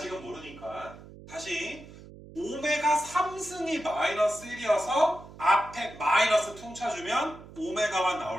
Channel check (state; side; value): noise; right; hum, 18 dB below the sound